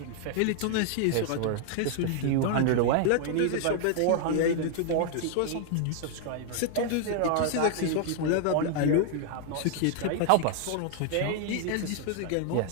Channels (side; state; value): both; different; correlation 0.00